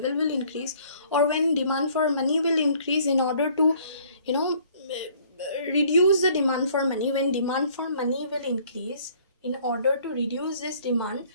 will increase. Or when demand for money will increase, in order to reduce the demand for money, when demand for money will increase, in order to reduce this demand,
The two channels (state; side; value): inverted; both; correlation -0.58